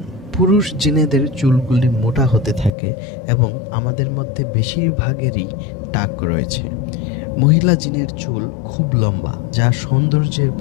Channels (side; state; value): right; drops out; at 2.7 s